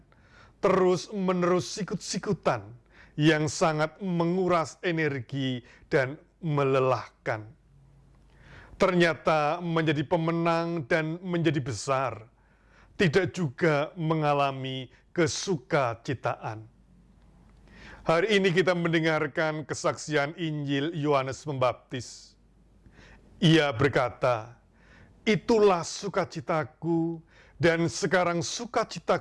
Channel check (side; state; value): both; identical; correlation 1.00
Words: terus-menerus sikut-sikutan, yang sangat menguras energi dan melelahkan. Ternyata menjadi pemenang dan menjadi besar tidak juga mengalami kesukacitaan. Hari ini kita mendengarkan kesaksian Injil Yohanes Pembaptis. Ia berkata, "Itulah sukacitaku, dan sekarang